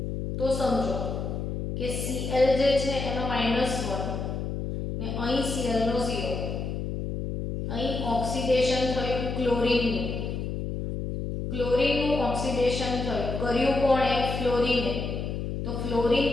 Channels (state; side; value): noise; left; hum, 4 dB below the sound